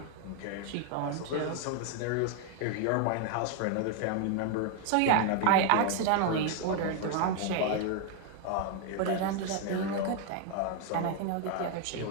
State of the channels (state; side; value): different; both; correlation 0.00